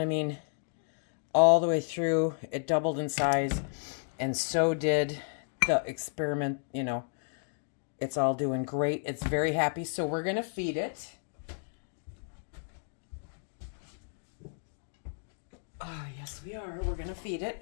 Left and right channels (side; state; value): right; silent; digital silence